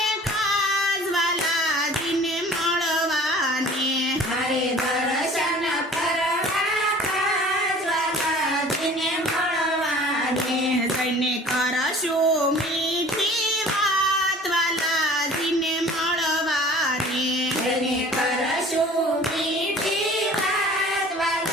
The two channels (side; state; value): both; normal; correlation 0.47